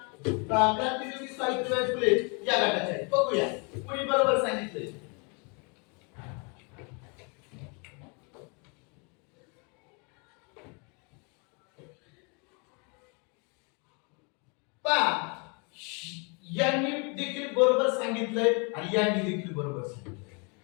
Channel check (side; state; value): right; quieter; 33.5 dB